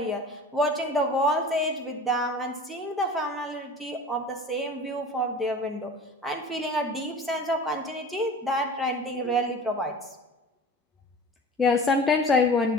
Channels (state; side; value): normal; both; correlation 0.39